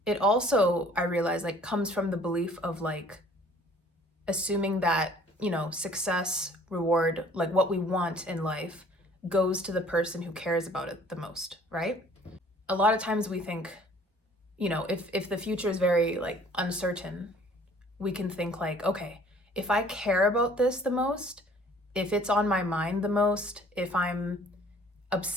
it also, I realize, like, comes from the belief of like assuming that, you know, success, reward, like what we want in life goes to the person who cares about it the most, right? A lot of times we think, you know, if the future is very like uncertain, we can think like, okay, if I care about this the most, if it's on my mind the most, if I'm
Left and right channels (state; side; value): normal; both; correlation 0.54